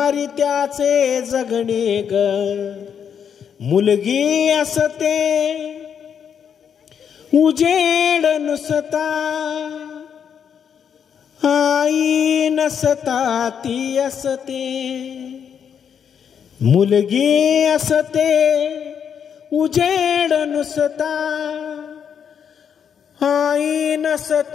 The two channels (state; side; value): quieter; right; 7.8 dB